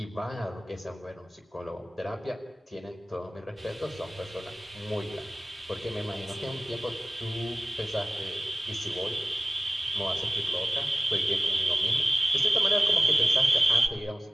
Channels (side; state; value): both; normal; correlation 0.96